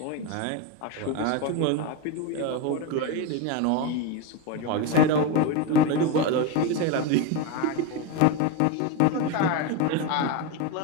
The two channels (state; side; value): different; both; correlation 0.04